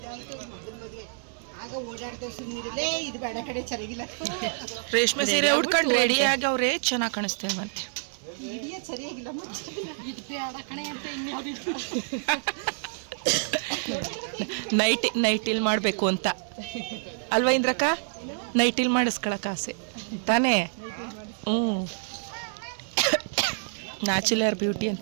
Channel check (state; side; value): silent; left; digital silence